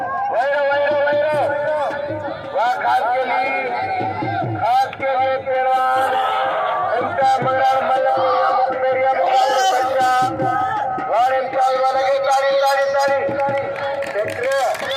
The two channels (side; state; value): both; identical; correlation 1.00